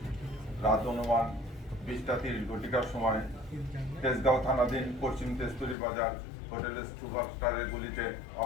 রাত অনুমান 20:30 সময় তেজগাঁও থানাধীন পশ্চিম তেজতুরি বাজার হোটেলের সুপারস্টারের গুলিতে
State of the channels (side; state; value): right; drops out; at 5.8 s